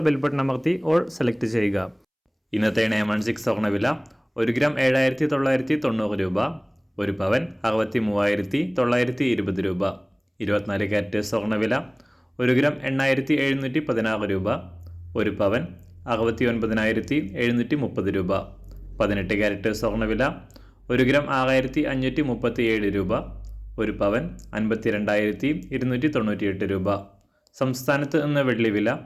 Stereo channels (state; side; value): identical; both; correlation 1.00